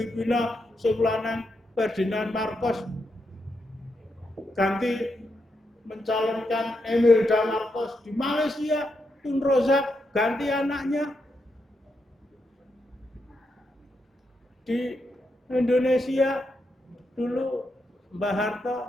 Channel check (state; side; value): normal; both; correlation 0.83